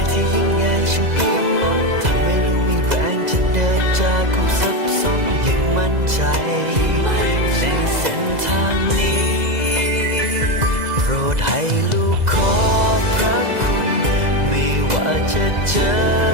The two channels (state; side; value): late; left; 2.0 ms